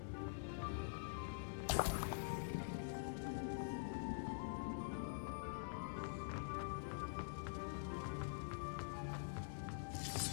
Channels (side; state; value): right; silent; digital silence